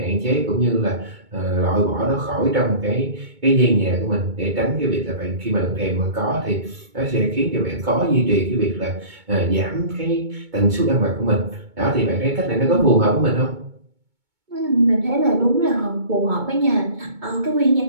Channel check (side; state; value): left; late; 2.2 ms